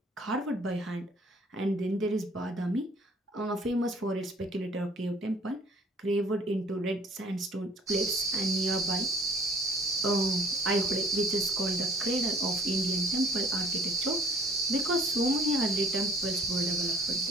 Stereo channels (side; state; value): both; normal; correlation 0.55